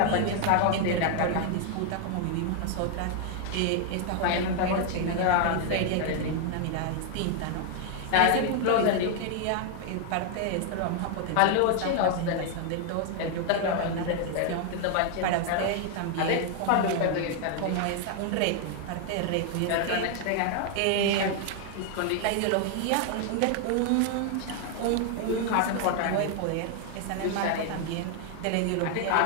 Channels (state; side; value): different; both; correlation 0.00